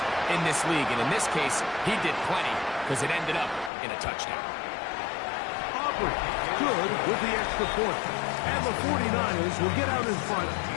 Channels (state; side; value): drops out; right; at 3.7 s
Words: in this league. And in this case, he did plenty, because it ended up in a touchdown. Aubrey, good with the extra point. And the 49ers will get out in front